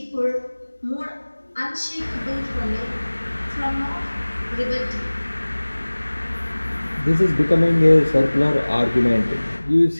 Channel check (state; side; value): inverted; both; correlation -1.00